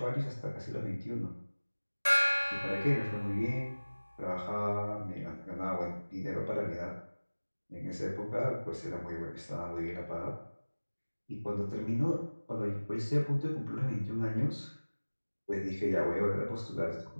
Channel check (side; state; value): both; inverted; correlation -1.00